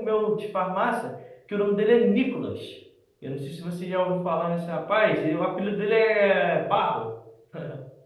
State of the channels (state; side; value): identical; both; correlation 1.00